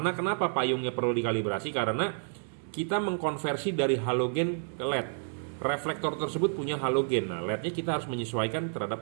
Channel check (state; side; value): silent; left; 58 dB below the other